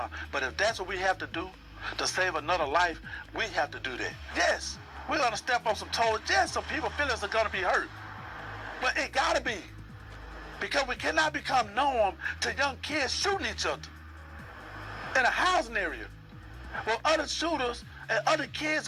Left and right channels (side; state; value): both; identical; correlation 1.00